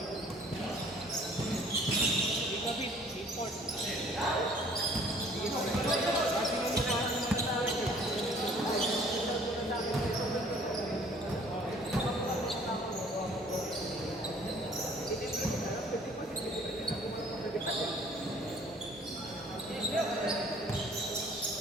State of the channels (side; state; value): both; normal; correlation 0.55